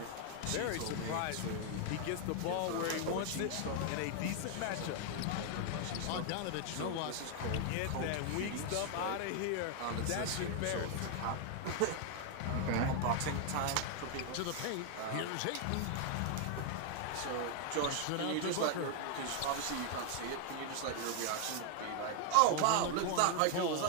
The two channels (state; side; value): different; both; correlation 0.00